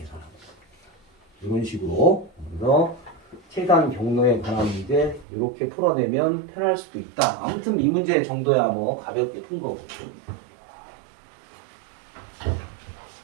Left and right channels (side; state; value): left; drops out; at 5.2 s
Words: 이런 식으로. 그래서 최단 경로에 관한 문제 이렇게 풀어내면 편할 수도 있다. 아무튼 이 문제 정도야 뭐 가볍게 푼 거고.